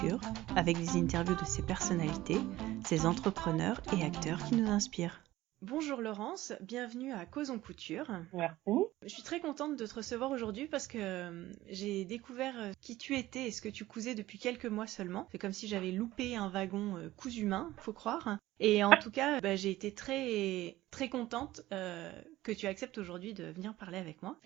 avec des interviews de ses personnalités, ses entrepreneurs et acteurs qui nous inspirent. Bonjour Laurence, bienvenue à Causons Couture. Merci. Je suis très contente de te recevoir aujourd'hui parce que j'ai découvert qui tu étais et ce que tu cousais depuis quelques mois seulement. C'est comme si j'avais loupé un wagon cousu main, faut croire. Et en tout cas, j'ai été très contente que tu acceptes aujourd'hui de venir parler avec moi.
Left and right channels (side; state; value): left; quieter; 16.4 dB